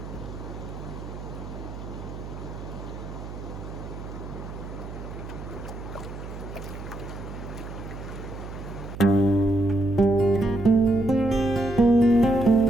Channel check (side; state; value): right; noise; hum, 10 dB below the sound